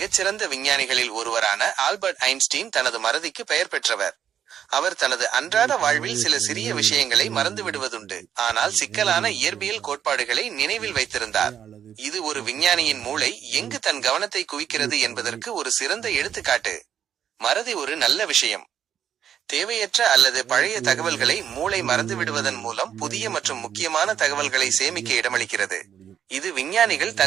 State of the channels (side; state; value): left; quieter; 9.2 dB